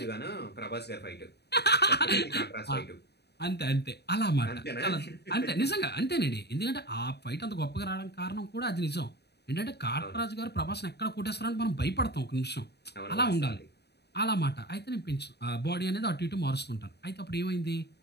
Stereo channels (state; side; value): late; right; 0.48 ms